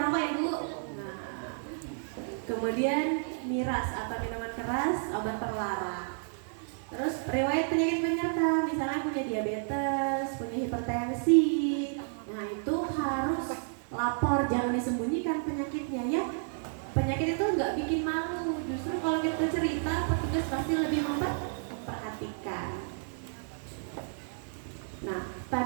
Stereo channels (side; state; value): left; silent; digital silence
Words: ya Bu. Nah, kemudian miras atau minuman keras, obat terlarang. Terus riwayat penyakit penyerta, misalnya punya diabetes, punya hipertensi. Nah itu harus lapor, jangan disembunyikan penyakitnya ya. Penyakit itu nggak bikin malu, justru kalau kita cerita petugas pasti lebih memperhatikan. Nah